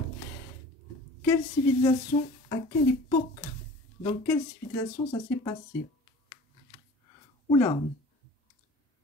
Quelle civilisation, à quelle époque, dans quelle civilisation ça s'est passé? Oula,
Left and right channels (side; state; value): both; normal; correlation 0.43